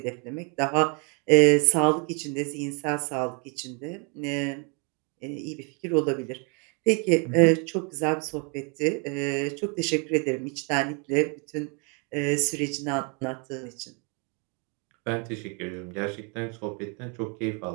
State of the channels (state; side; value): quieter; left; 35.3 dB